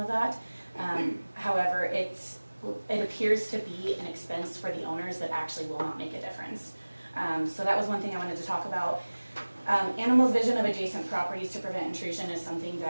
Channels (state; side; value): inverted; both; correlation -1.00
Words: that. However, it appears to be an expense for the owners that actually will not make a difference. So that was one thing I wanted to talk about. Animals' vision of adjacent properties to prevent intrusion is something